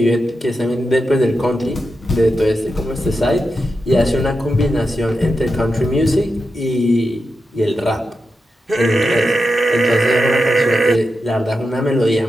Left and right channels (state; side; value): normal; both; correlation 0.89